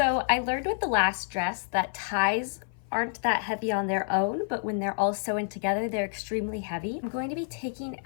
I learned with the last dress that ties aren't that heavy on their own, but when they're all sewn together, they're extremely heavy. I'm going to be taking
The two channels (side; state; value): right; silent; 56 dB below the other